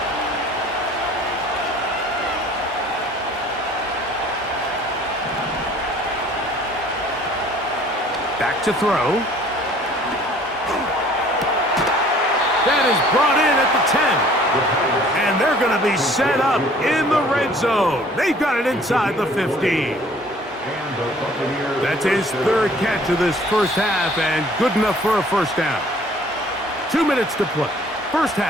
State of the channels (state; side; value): normal; both; correlation 0.53